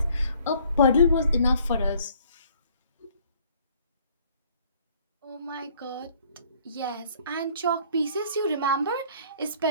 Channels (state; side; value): inverted; both; correlation -0.59